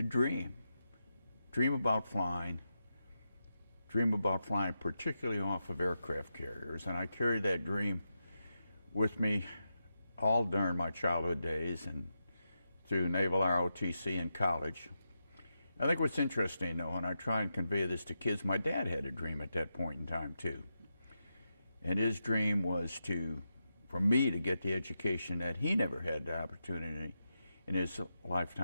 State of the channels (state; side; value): inverted; both; correlation -0.88